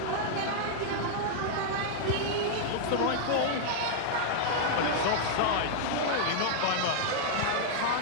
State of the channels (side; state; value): both; different; correlation -0.01